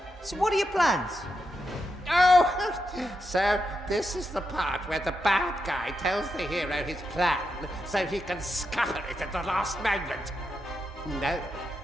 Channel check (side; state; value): both; normal; correlation 0.85